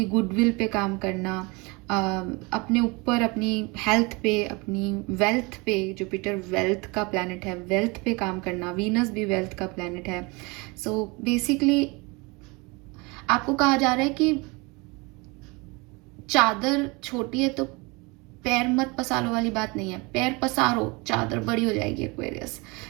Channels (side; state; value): left; quieter; 26.8 dB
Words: गुडविल पे काम करना, अपने ऊपर, अपनी हेल्थ पे, अपनी वेल्थ पे, जुपिटर वेल्थ का प्लैनेट है, वेल्थ पे काम करना, वीनस भी वेल्थ का प्लैनेट है। सो बेसिकली आपको कहा जा रहा है कि चादर छोटी है तो पैर मत पसारो वाली बात नहीं है, पैर पसारो, चादर बड़ी हो जाएगी एक्वेरियस।